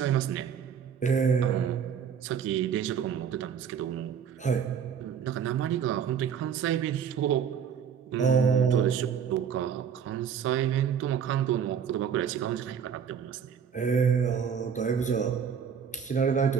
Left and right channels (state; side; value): quieter; left; 7.5 dB